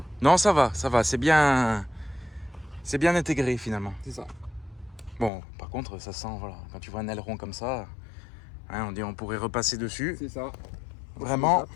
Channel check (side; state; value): right; drops out; at 5.3 s